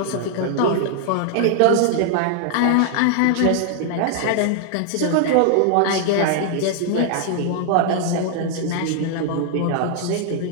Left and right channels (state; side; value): different; both; correlation 0.00